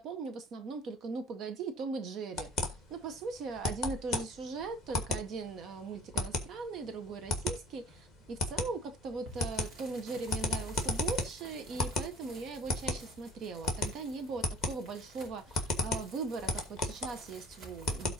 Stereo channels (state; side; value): normal; both; correlation 0.49